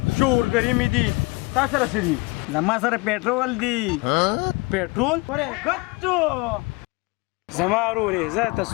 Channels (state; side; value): quieter; right; 26.4 dB